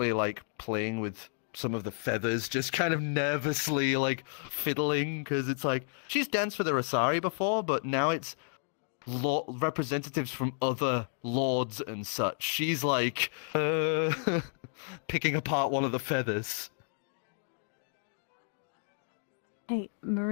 playing with some of the feathers, just kind of nervously fiddling, because it's she's danced for the Rosari before, but now it's representatives from other lords and such. She's picking apart one of the feathers. Hey,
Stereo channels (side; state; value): right; silent; digital silence